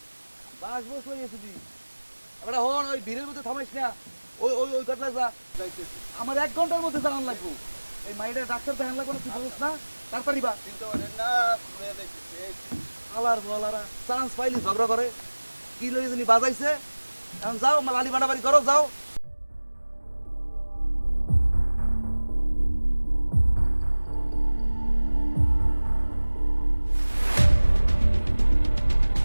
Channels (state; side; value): inverted; both; correlation -1.00